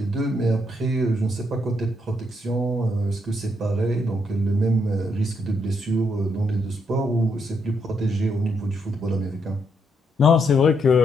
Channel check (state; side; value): normal; both; correlation 0.77